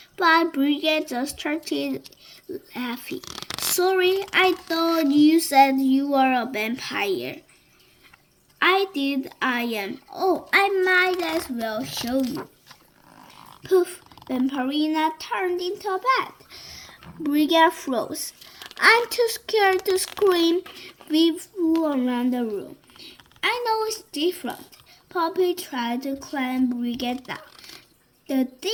but Brigette just started laughing. Sorry, I thought you said you were a vampire. I did, I am. Oh, I might as well show you. Poof, Vampirina turned into a bat. Brigette froze. I'm too scared to scream. We flew around the room. I know it's different. Poppy tried to climb Brigette down. The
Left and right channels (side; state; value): both; identical; correlation 1.00